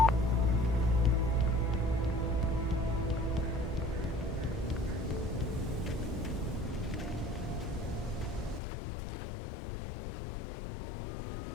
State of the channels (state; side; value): drops out; right; at 8.6 s